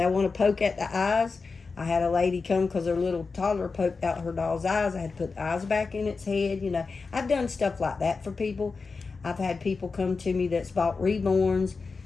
want to poke at the eyes. I had a lady come because her little toddler poked out her doll's eyes. I had to put the eyes back in its head. You know, I've done stuff like that for people. I've had people come to me that's bought reborns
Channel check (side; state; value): right; quieter; 4.5 dB